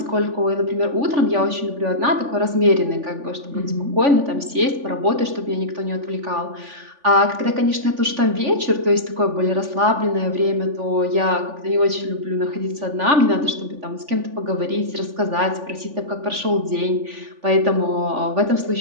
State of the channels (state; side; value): late; left; 3.5 ms